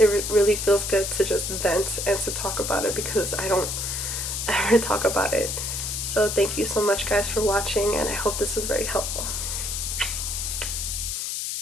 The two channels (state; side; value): noise; left; hiss, 3 dB below the sound